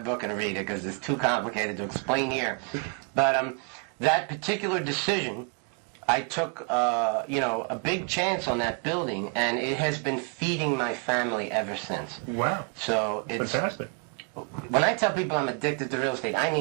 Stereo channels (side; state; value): left; quieter; 39.1 dB